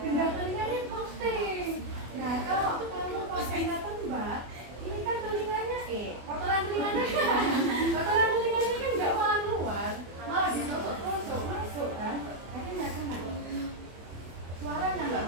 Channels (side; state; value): left; late; 24 ms